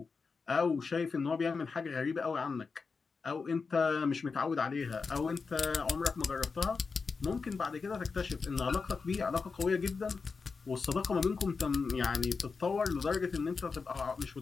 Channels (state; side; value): quieter; right; 4.8 dB